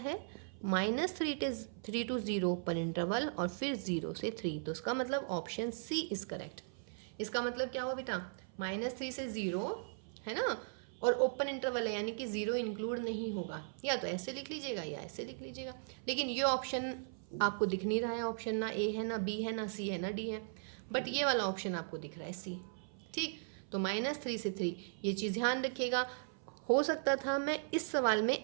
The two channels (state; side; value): silent; left; 53 dB below the other